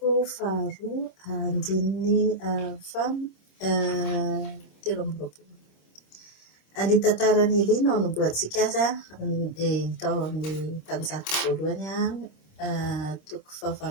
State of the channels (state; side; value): late; right; 26 ms